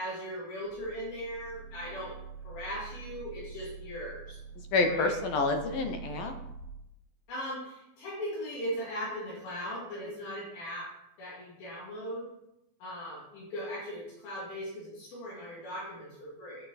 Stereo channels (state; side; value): late; right; 12 ms